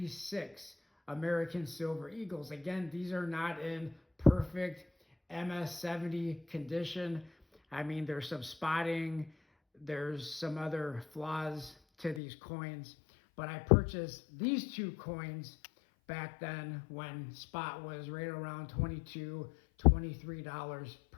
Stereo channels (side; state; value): right; drops out; at 12.2 s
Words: American Silver Eagles, again, these are not in perfect MS-70 condition. I mean, there's some spotting, there's some other flaws to these coins, but I purchased these two coins back then when spot was right around $22, $23